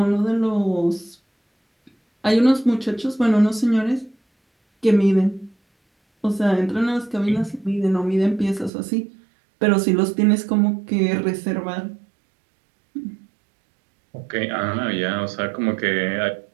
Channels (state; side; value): drops out; left; at 8.7 s